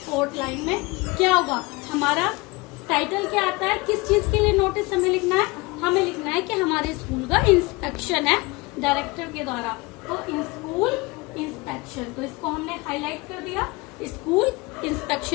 फोर्थ लाइन में क्या होगा, हमारा टाइटल क्या आता है, किस चीज के लिए नोटिस हमें लिखना है, हमें लिखना है कि हमारे स्कूल का इंस्पेक्शन है डायरेक्टर के द्वारा। तो स्कूल इंस्पेक्शन, तो इसको हमने हाईलाइट कर दिया, स्कूल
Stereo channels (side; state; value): right; quieter; 24.2 dB